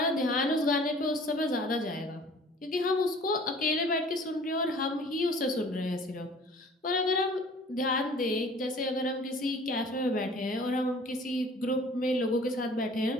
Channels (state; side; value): normal; both; correlation 0.50